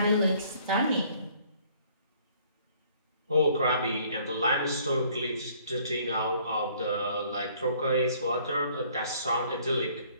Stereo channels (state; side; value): inverted; both; correlation -0.60